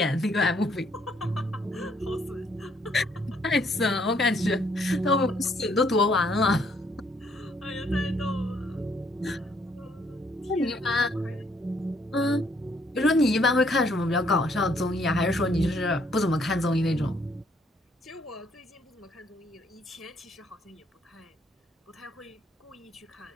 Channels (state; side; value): normal; both; correlation 0.68